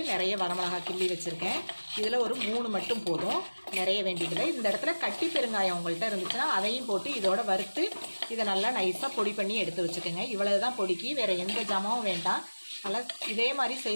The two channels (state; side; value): inverted; both; correlation -1.00